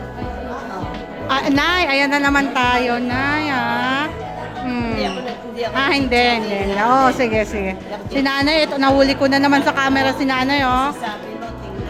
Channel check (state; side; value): identical; both; correlation 1.00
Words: Ah, Nay, ayan na naman tayo, Nay, ah. Ah, hindi. Oo, sige. Si Nanay, ito, nahuli ko na naman sa camera si Nanay, oh.